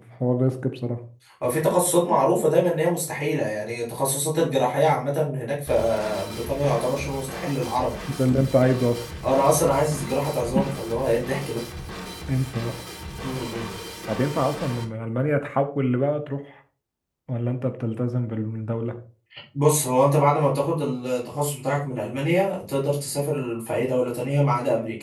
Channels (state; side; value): identical; both; correlation 1.00